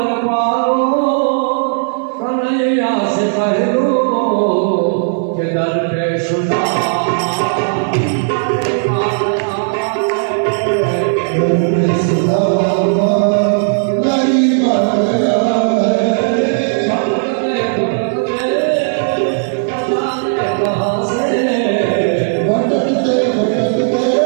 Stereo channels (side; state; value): left; silent; digital silence